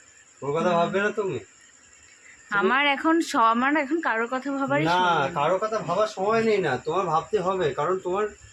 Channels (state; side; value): identical; both; correlation 1.00